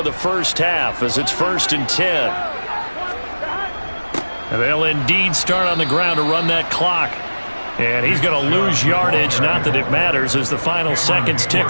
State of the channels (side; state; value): both; inverted; correlation -1.00